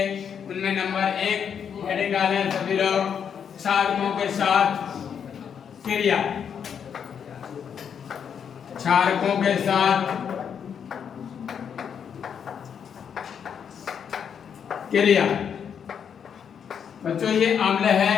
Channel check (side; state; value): right; quieter; 7.6 dB